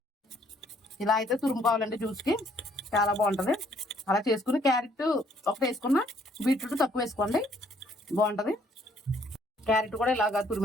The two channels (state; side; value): normal; both; correlation 0.65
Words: ఇలా అయితే తురుముకోవాలండి. జ్యూస్కి చాలా బాగుంటుంది. అలా చేసుకుని క్యారెట్ ఒకటి వేసుకున్న, బీట్రూట్ తక్కువ వేసుకోండి, బాగుంటుంది. క్యారెట్ కూడా ఇలాగా